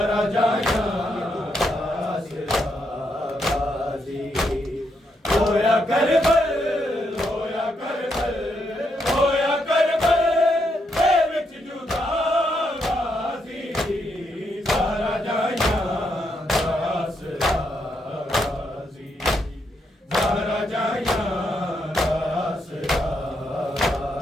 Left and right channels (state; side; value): normal; both; correlation 0.79